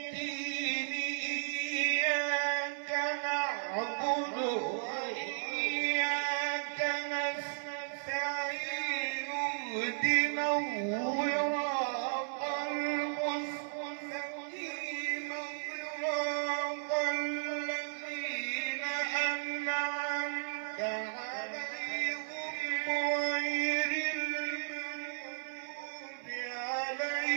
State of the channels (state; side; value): silent; left; 55 dB below the other